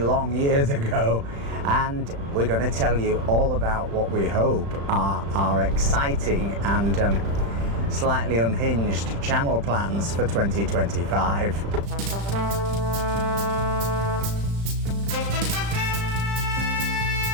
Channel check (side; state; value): left; late; 35 ms